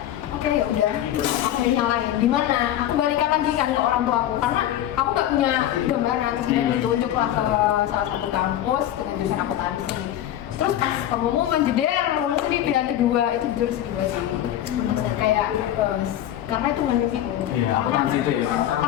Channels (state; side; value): quieter; right; 12.1 dB